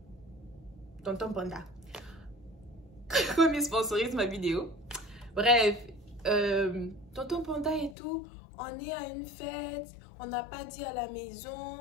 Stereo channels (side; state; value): right; drops out; at 8.0 s